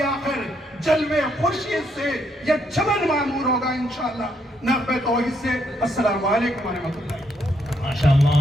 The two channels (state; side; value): normal; both; correlation 0.74